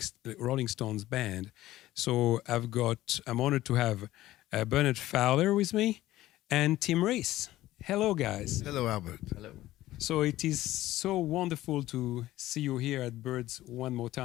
Stones band. So I'm honored to have Bernard Fowler with me and Tim Reese. Hello, guys. Hello, Albert. Hello. So it is so wonderful to see you here at Birds one more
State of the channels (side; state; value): right; quieter; 15.6 dB